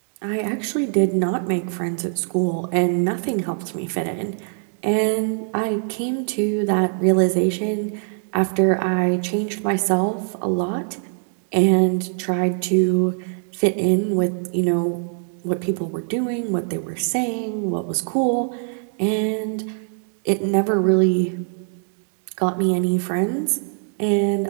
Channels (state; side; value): silent; left; 61 dB below the other